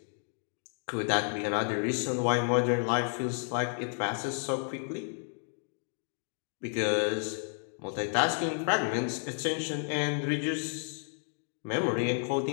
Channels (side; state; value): right; silent; 57 dB below the other